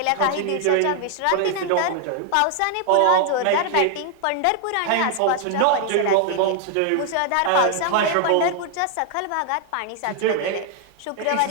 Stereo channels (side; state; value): both; different; correlation 0.00